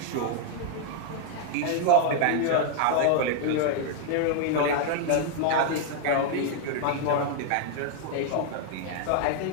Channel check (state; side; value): different; both; correlation 0.00